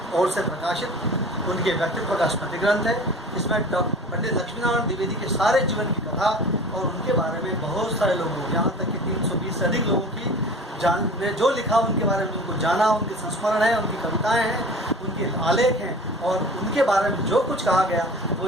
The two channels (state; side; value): normal; both; correlation 0.40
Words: ओर से प्रकाशित उनके व्यक्तित्व का स्मृति ग्रंथ है। इसमें पंडित लक्ष्मीनारायण द्विवेदी के सारे जीवन की कथा और उनके बारे में बहुत सारे लोगों, यहाँ तक कि 320 से अधिक लोगों की ने जो लिखा उनके बारे में, उनको जाना, उनके संस्मरण है, उनकी कविताएं हैं, उनके आलेख हैं और उनके बारे में जो कुछ कहा गया वो